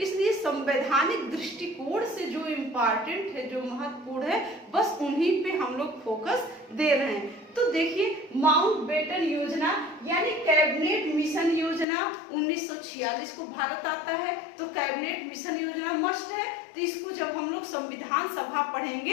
संवैधानिक दृष्टिकोण से जो इम्पोर्टेंट है, जो महत्वपूर्ण है, बस उन्हीं पे हम लोग फोकस दे रहे हैं। तो देखिए, माउंटबेटन योजना यानी कैबिनेट मिशन योजना 1946 को भारत आता है, तो कैबिनेट मिशन योजना मस्ट है। तो इसको जब हम लोग संविधान सभा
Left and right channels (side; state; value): right; drops out; at 11.9 s